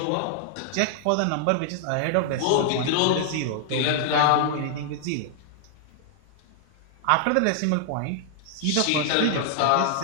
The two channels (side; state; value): both; different; correlation -0.01